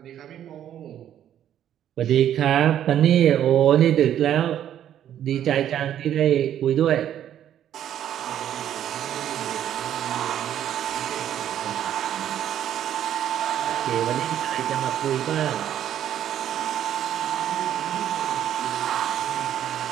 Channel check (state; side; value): quieter; left; 10.7 dB